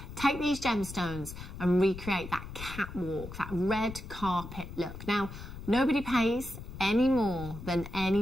Take these gemstones and recreate that catwalk, that red carpet look. Now, nobody pays any more than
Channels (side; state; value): left; noise; rumble, 11 dB below the sound